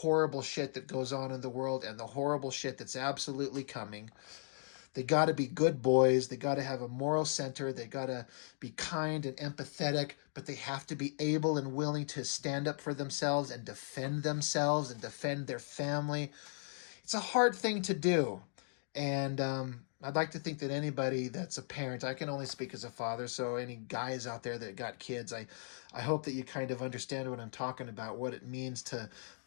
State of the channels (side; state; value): right; silent; digital silence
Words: shit that goes on in the world and the horrible shit that's absolutely coming. They got to be good boys. They got to have a moral center. They got to be kind and empathetic, but they have to be able and willing to stand up for themselves and defend their family. It's a hard thing to do. And I'd like to think that anybody that's a parent, I can only speak as a father, so any guys out there that got kids, I hope that you kind of understand what I'm talking about, what it means to